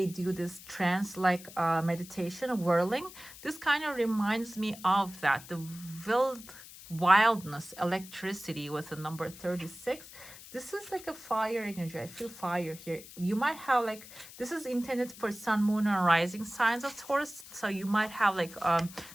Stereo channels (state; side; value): noise; left; hiss, 17 dB below the sound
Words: do this trance like meditation, whirling. This kind of reminds me of that, the wildness, electricity with the number 36. This is like a fire energy. I feel fire here. You might have like, this is intended for sun, moon, and rising signs of Taurus. So you might have like